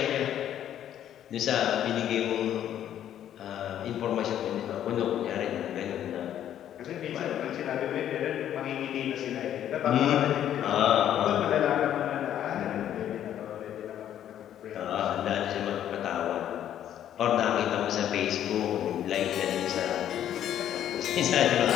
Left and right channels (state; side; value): quieter; right; 10.7 dB